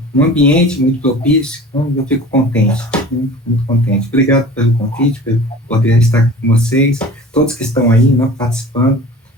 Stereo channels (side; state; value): both; normal; correlation 0.40